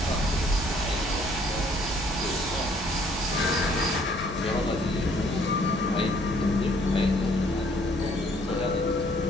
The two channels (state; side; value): normal; both; correlation 0.62